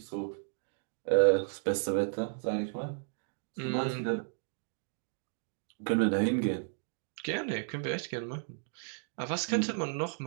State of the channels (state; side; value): silent; left; 55 dB below the other